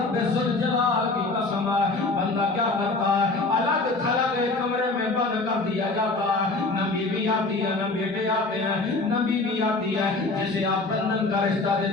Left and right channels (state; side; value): quieter; right; 3.4 dB